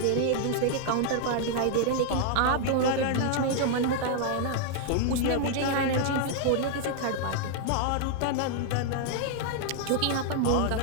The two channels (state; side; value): different; both; correlation 0.00